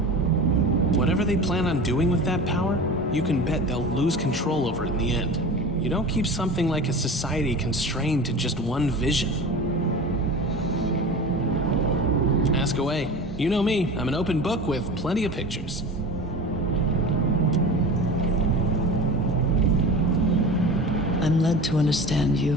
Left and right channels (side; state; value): both; normal; correlation 0.33